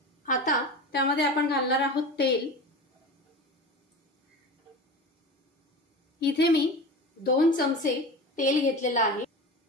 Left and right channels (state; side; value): normal; both; correlation 0.31